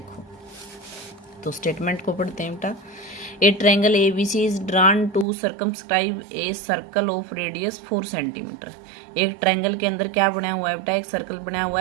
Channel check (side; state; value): left; drops out; at 5.2 s